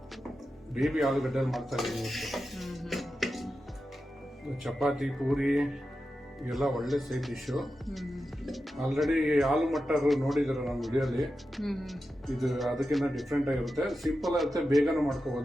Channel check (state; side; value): normal; both; correlation 0.91